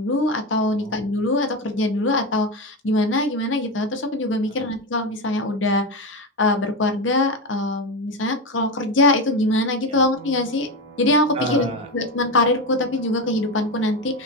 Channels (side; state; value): both; normal; correlation 0.16